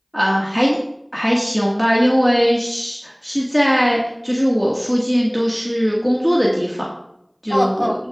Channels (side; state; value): both; identical; correlation 1.00